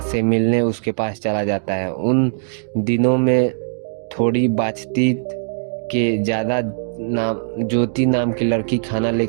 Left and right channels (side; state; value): left; silent; digital silence